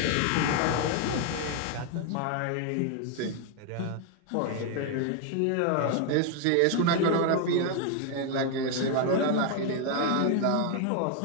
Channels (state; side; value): different; both; correlation 0.01